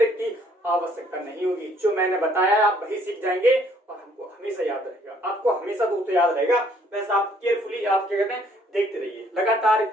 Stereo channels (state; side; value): normal; both; correlation 0.63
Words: की आवश्यकता नहीं होगी। जो मैंने बताया आप वही सीख जाएंगे और हमको हमेशा याद रहेगा। आपको हमेशा दोस्तों याद रहेगा। बस आप केयरफुली, आप क्या कहते हैं, देखते रहिए, लगातार